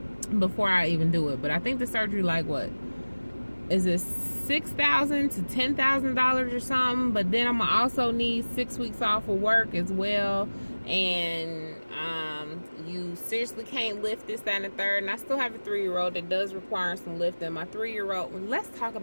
Before I even do it. But I think the surgery, like, what is it, $6,000 to $10,000 or something? But then I'm gonna also need 6 weeks off of work as well, and you seriously can't lift this, that, and the third. And I still have a 3-year-old that does require some lifting. My 3-year-old, let's talk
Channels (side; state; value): both; inverted; correlation -1.00